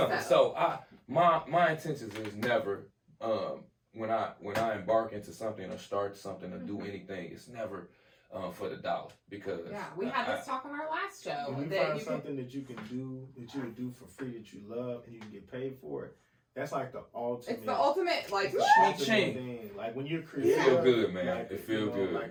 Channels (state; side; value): identical; both; correlation 1.00